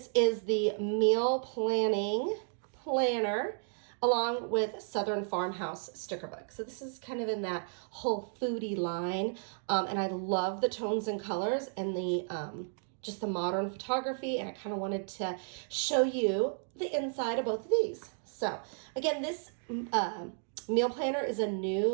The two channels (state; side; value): silent; left; digital silence